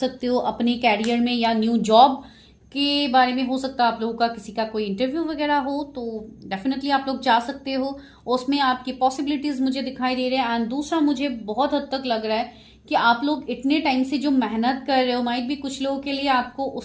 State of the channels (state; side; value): identical; both; correlation 1.00